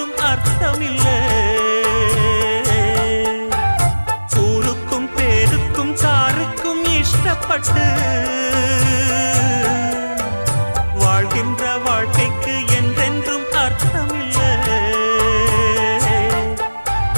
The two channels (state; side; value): inverted; both; correlation -1.00